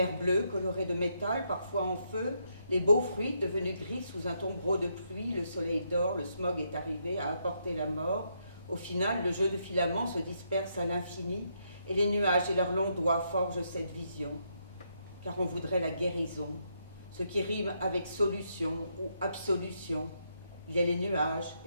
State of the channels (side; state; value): both; inverted; correlation -0.77